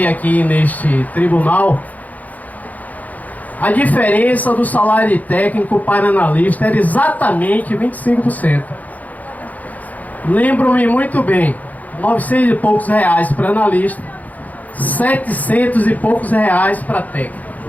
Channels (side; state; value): right; late; 0.078 ms